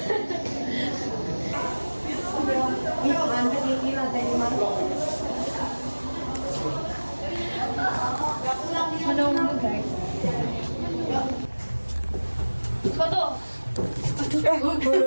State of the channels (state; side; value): inverted; both; correlation -1.00